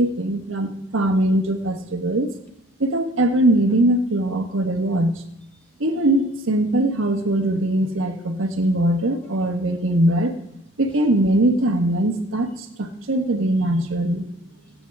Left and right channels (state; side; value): normal; both; correlation 0.52